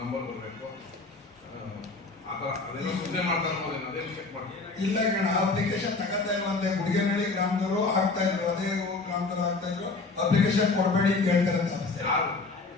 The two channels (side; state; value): right; quieter; 3.8 dB